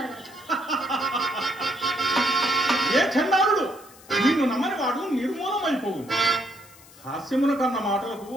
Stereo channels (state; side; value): noise; left; hiss, 23 dB below the sound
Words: ఏ చండాలుడు! నిన్ను నమ్మని వాడు నిర్మూలమైపోవు. హాస్యమున కన్న మాటలకు